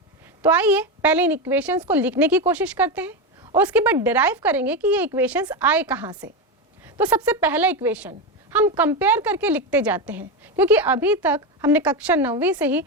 तो आइए पहले इन इक्वेशंस को लिखने की कोशिश करते हैं और उसके बाद डिराइव करेंगे कि ये इक्वेशंस आए कहाँ से। तो सबसे पहला इक्वेशन हम कंपेयर करके लिखते जाते हैं, क्योंकि अभी तक हमने कक्षा 9वीं से ही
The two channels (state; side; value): normal; both; correlation 0.14